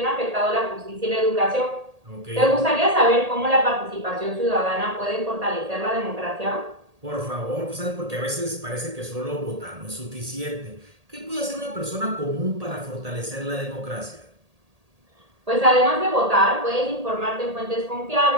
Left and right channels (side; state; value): left; late; 1.8 ms